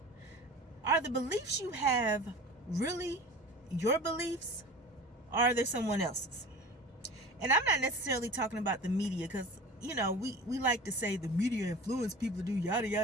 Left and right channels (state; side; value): normal; both; correlation 0.37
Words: Are the beliefs you have really your beliefs, or are they someone else's? And I'm not necessarily talking about the media, because, we like to say the media influence people to do yada,